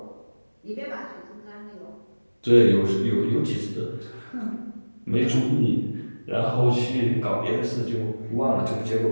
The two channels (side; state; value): both; inverted; correlation -1.00